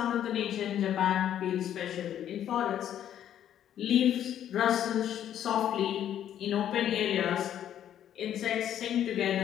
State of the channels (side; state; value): right; quieter; 10.5 dB